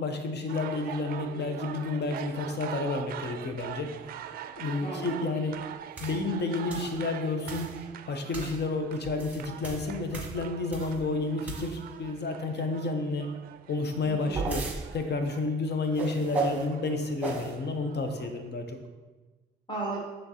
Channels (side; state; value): both; normal; correlation 0.38